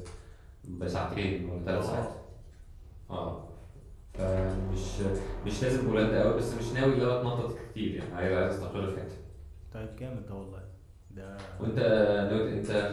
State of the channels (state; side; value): identical; both; correlation 1.00